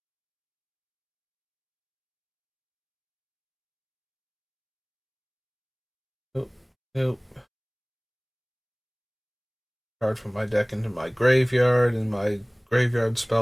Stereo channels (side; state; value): both; identical; correlation 1.00